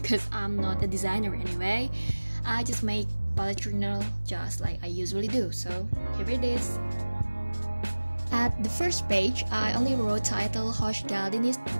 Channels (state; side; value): inverted; both; correlation -1.00